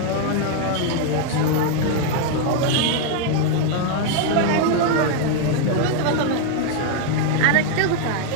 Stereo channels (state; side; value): different; both; correlation 0.00